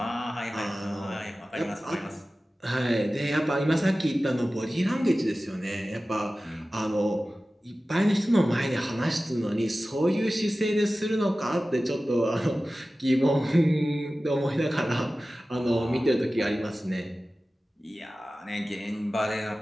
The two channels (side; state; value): both; normal; correlation 0.96